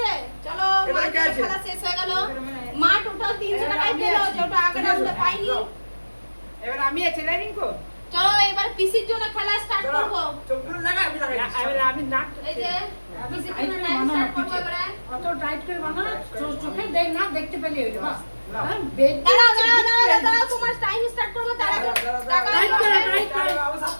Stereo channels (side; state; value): both; inverted; correlation -1.00